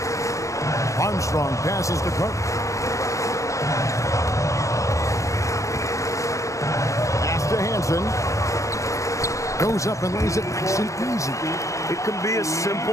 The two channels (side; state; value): right; late; 0.15 ms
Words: Armstrong passes to Carter. Pass to Hansen. Goes up and lays it nice and easy. It can be a